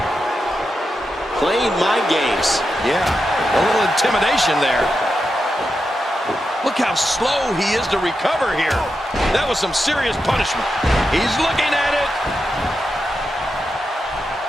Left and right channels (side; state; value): both; normal; correlation 0.87